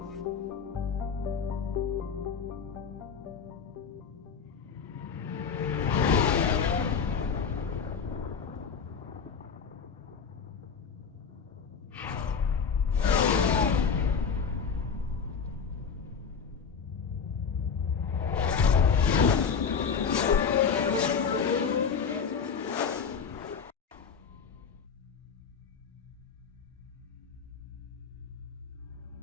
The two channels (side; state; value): right; quieter; 6.3 dB